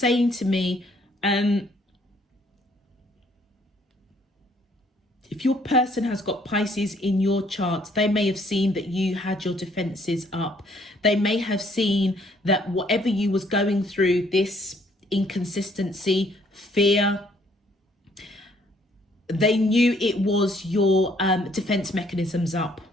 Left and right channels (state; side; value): normal; both; correlation 0.64